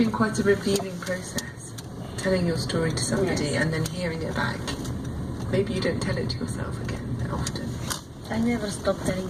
quite a revealing process, telling your story to somebody Yes. and then hearing it back. Maybe you don't tell it to yourself again that often. I never stop telling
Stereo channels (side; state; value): both; identical; correlation 1.00